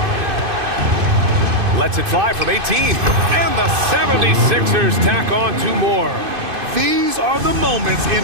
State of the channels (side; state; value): left; late; 2.5 ms